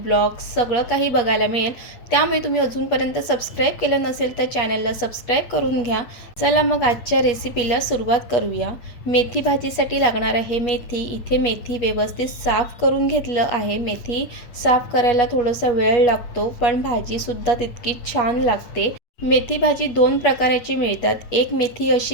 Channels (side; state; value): right; late; 8.4 ms